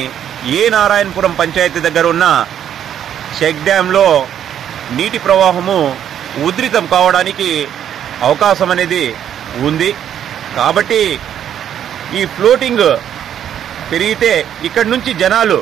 ఏ నారాయణపురం పంచాయతీ దగ్గర ఉన్న చెక్ డ్యాంలో నీటి ప్రవాహము ఉధృతం కావడానికి అవకాశం అనేది ఉంది. కాబట్టి ఈ ఫ్లోటింగ్ పెరిగితే ఇక్కడి నుంచి జనాలు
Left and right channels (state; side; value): quieter; left; 9.8 dB